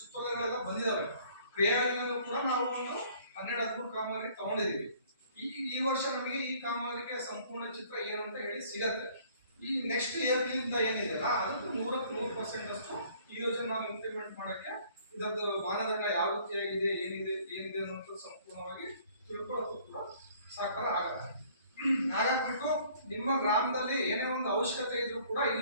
ಬಂದಿದಾವೆ. ಕ್ರಿಯಾಯೋಜನೆಯಲ್ಲೂ ಕೂಡ ನಾವು ಒಂದು 12-13 ಕಾಮಗಾರಿ ತಗೊಂಡಿದೀವಿ. ಈ ವರ್ಷ ನಮಗೆ ಈ ಕಾಮಗಾರಿಕೆ ಸಂಪೂರ್ಣ ಚಿತ್ರ ಏನು ಅಂತ ಹೇಳಿ ಸಿಗತ್ತೆ. ಈ ನೆಕ್ಸ್ಟ್ ಏಪ್ರಿಲಿಂದ ಏನಿದೆಯಲ್ಲ ಅದಕ್ಕೆ 100% ಅಷ್ಟು ಈ ಯೋಜನೆ ನಾವು ಇಂಪ್ಲಿಮೆಂಟ್ ಮಾಡಕ್ಕೆ ಇದರದ್ದು ಮಾನದಂಡ ಯಾವ ರೀತಿಯಾಗಿದೆ ಏನಿದೆ ಅನ್ನೋದು ಸಂಪೂರ್ಣವಾಗಿ ತಿಳ್ಕೊಳ್ಳೋದು ಕೂಡ ಸಾಕಾರ ಆಗತ್ತೆ. ಹಾಗಾಗ್ಬಿಟ್ಟು ನಿಮ್ಮ ಗ್ರಾಮದಲ್ಲಿ ಏನೇ ಒಂದು ಅವಶ್ಯಕತೆ ಇದ್ರೂ ಕೂಡ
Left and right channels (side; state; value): both; inverted; correlation -0.57